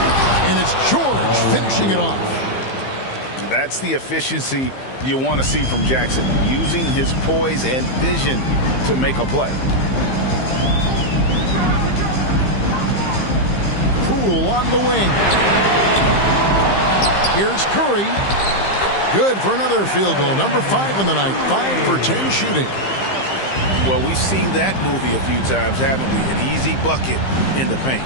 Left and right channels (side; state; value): right; late; 15 ms